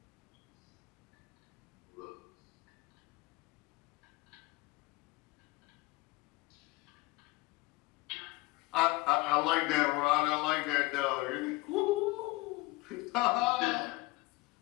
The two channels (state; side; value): quieter; right; 22.5 dB